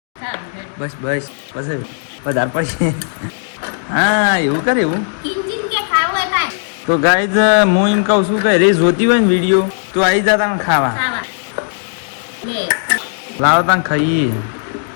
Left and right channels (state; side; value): silent; right; digital silence